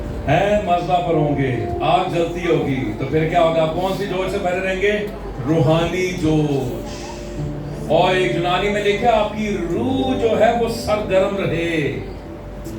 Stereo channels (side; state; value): both; identical; correlation 1.00